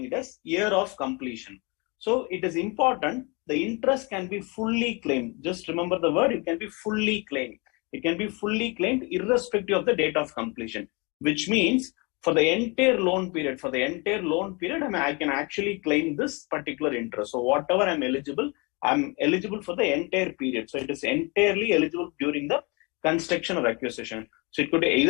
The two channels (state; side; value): quieter; right; 29.2 dB